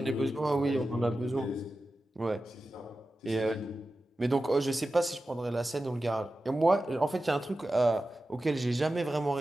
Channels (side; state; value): both; normal; correlation 0.93